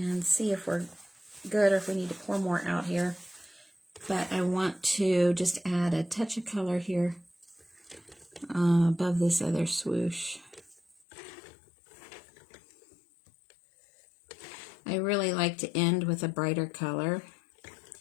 see if we're good or if we need to pour more out here. But I want to just add a touch of color here above this other swoosh. I really like to end with a brighter color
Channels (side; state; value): right; drops out; at 11.0 s